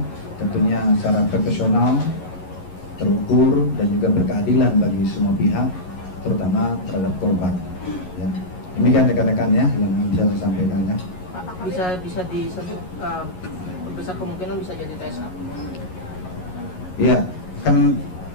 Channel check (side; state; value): right; late; 11 ms